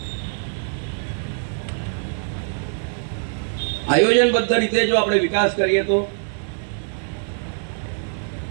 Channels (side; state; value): left; silent; 63 dB below the other